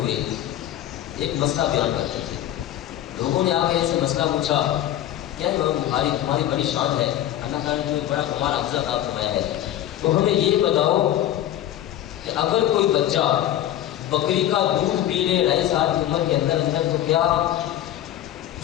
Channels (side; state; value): right; quieter; 12.4 dB